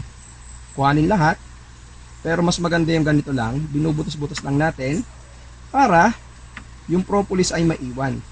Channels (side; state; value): both; identical; correlation 1.00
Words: kuhanin lahat. Pero mas maganda yung ganito lang. Binubutos-butos lang natin para yung propolis ay maiwan.